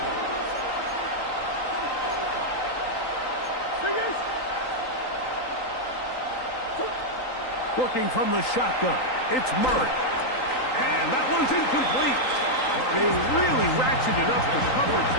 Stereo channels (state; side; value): late; right; 3.8 ms